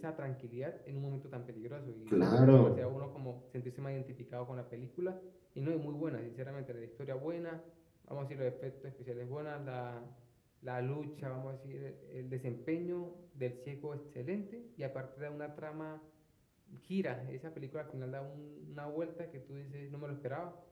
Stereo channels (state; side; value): identical; both; correlation 1.00